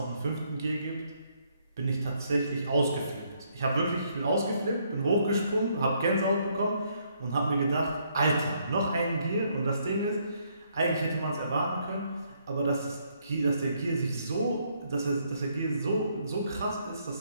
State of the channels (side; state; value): both; inverted; correlation -0.71